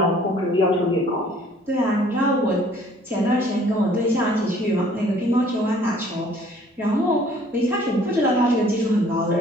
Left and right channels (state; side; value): normal; both; correlation 0.57